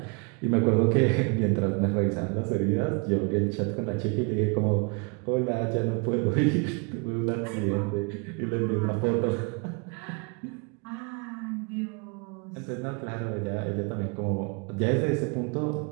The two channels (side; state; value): left; quieter; 33.8 dB